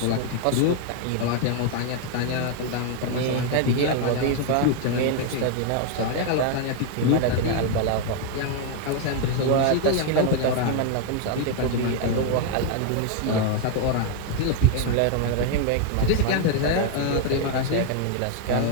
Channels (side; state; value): both; different; correlation 0.01